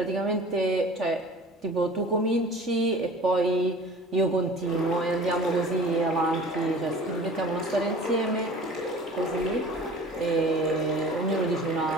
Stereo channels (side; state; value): both; normal; correlation 0.43